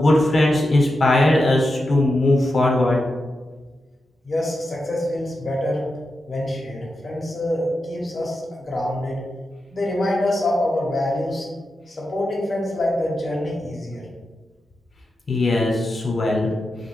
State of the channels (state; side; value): normal; both; correlation 0.89